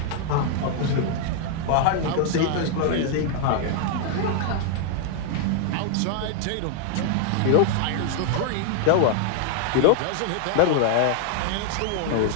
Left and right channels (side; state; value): both; different; correlation 0.00